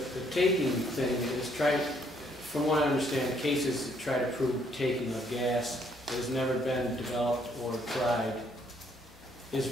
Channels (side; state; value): both; normal; correlation 0.68